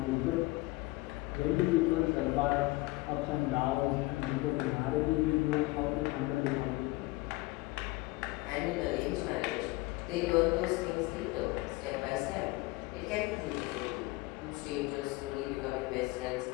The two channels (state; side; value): quieter; right; 21.9 dB